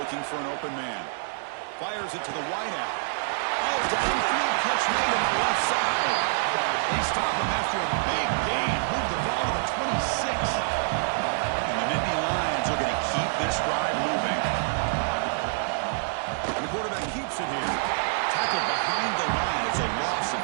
for an open man. Fires it to the wideout. Oh, downfield catch made on the left side. They stop him after a big gain. Move the ball to the 26. And the Nittany Lions are going to keep this drive moving. And the quarterback keeps it here. Tackled behind the line. It's a loss of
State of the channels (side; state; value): left; silent; digital silence